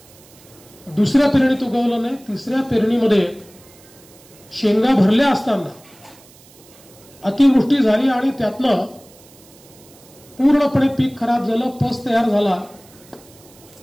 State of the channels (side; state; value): right; noise; hiss, 25 dB below the sound